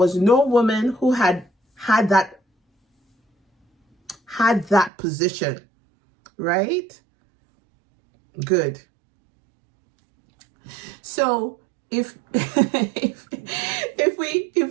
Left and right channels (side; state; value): left; drops out; at 4.9 s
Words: no woman who had that position, right? Good. So if